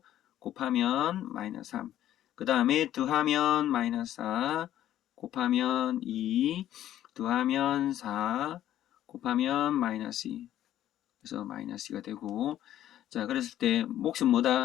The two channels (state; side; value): quieter; right; 12.2 dB